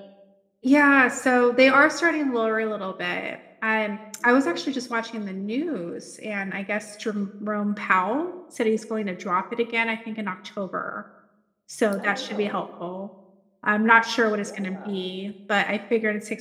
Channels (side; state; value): both; identical; correlation 1.00